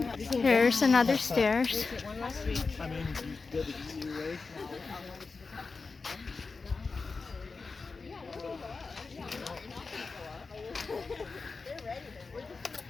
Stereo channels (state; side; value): quieter; right; 4.3 dB